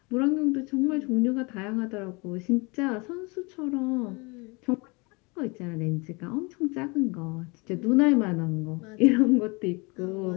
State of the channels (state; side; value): quieter; right; 28.2 dB